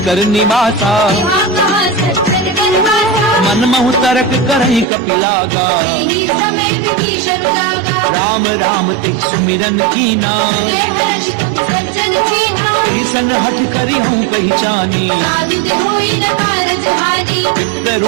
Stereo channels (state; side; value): drops out; left; at 4.9 s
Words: निवासा यहाँ कहाँ सज्जन गणवासा मन महु तरक करही कपिलागा यही समय विभीषण जागा राम राम तिह सुमिरन कीना हृदय हर्ष तुम सज्जन कीना ईसन हठ करी हूँ पहचानी साधु दे होई न कारज हानि विप्र